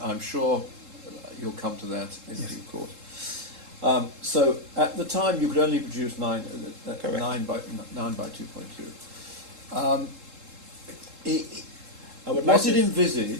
I'm sure you'll come to that in Yes. due course. So at the time you could only produce 9 by 2.2. I would Was like it to-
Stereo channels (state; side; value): late; left; 3.7 ms